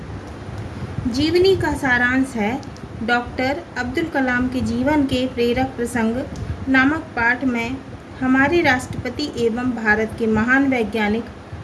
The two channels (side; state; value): both; identical; correlation 1.00